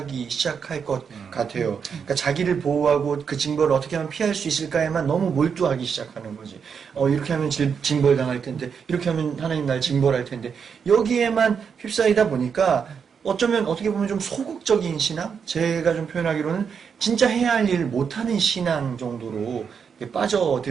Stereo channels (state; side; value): quieter; left; 6.6 dB